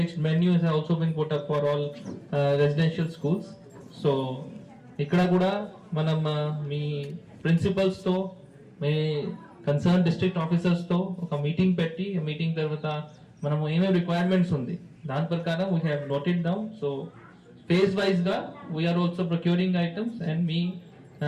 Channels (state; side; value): identical; both; correlation 1.00